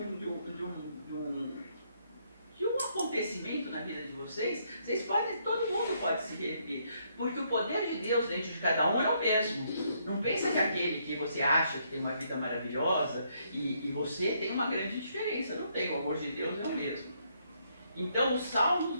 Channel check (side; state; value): both; inverted; correlation -0.72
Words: um acontecimento na vida de vocês, todo mundo pode se reerguer, porque o poder de Deus dentro de cada um é o mesmo. Não pensa que aquele que você acha que tem uma vida maravilhosa e você tem uma grande diferença, não tem, o amor de Deus é o mesmo. Então os salmos